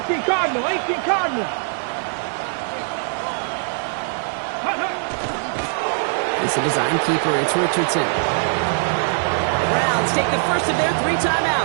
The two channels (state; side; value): silent; left; 58 dB below the other